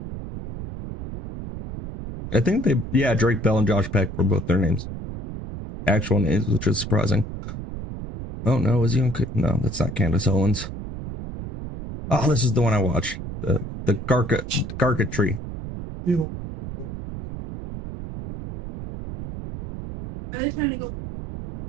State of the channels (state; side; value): noise; right; rumble, 9 dB below the sound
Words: I think Drake Bell and Josh Peck were both their names. Actual names, which is surprising. Oh no, is he on? No, that's not Candace Owens. Oh, this is the one I watched. The Garka tree. Are they trying to go?